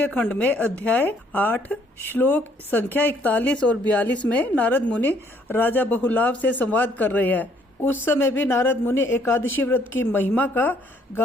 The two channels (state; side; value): normal; both; correlation 0.65